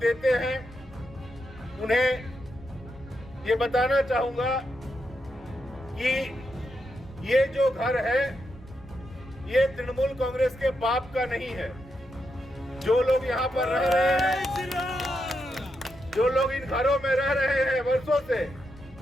हैं उन्हें ये बताना चाहूंगा कि ये जो घर है ये तृणमूल कांग्रेस के बाप का नहीं है। जो लोग यहाँ पर रह रहे हैं, जो लोग इन घरों में रह रहे हैं वर्षों से,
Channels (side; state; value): both; normal; correlation 0.84